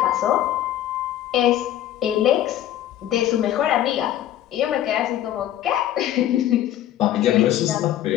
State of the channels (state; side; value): quieter; right; 12.3 dB